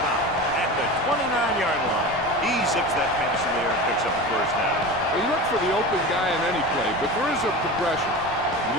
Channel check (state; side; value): noise; right; rumble, 18 dB below the sound